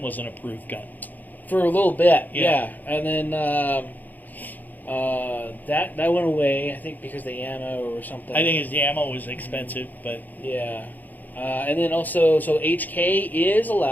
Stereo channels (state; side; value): late; right; 0.084 ms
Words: was an approved gun for a little bit. Yeah. And then that went away. I think because the ammo or something. I think the ammo was expensive, but yeah. And then also, so HK is